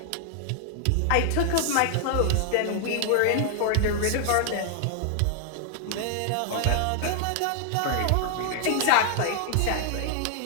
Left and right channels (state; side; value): different; both; correlation 0.00